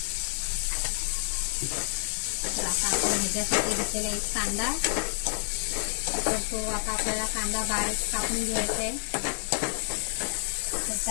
तर आता आपण ह्याच्यासाठी घेतलेला एक कांदा, तर तो आता आपल्याला कांदा बारीक कापून घ्यायचा आहे। तर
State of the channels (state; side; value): silent; right; 59 dB below the other